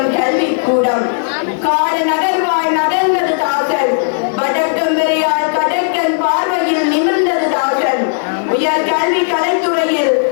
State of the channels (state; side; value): silent; right; digital silence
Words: கல்வி கூடம். காடு நகர்வாய் நகர்ந்தது தாசன், வடக்கம் வரையால் கடற்கன் பார்வையில் நிமிர்ந்தது தாசன். உயர் கல்வி கலைத்துறையில்